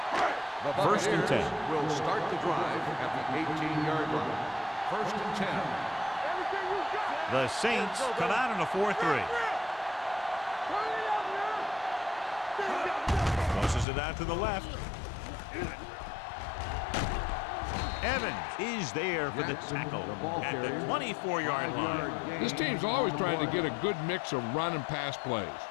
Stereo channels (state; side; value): drops out; right; at 13.9 s